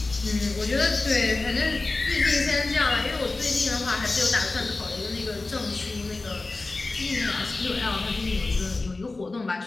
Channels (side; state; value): right; quieter; 3.4 dB